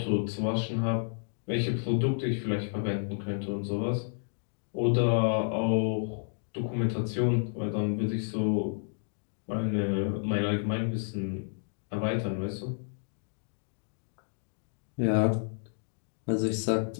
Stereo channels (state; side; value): silent; right; digital silence